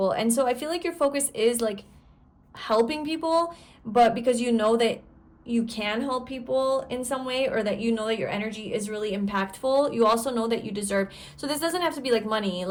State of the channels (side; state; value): both; identical; correlation 1.00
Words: And so I feel like your focus is like helping people, but because you know that you can help people in some way, or that that your energy is really impactful, you also know that you deserve. So this doesn't have to be like money.